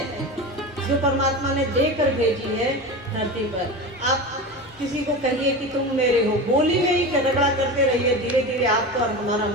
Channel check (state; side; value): normal; both; correlation 0.27